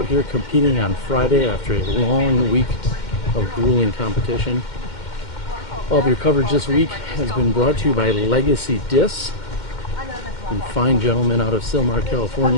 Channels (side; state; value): right; late; 2.1 ms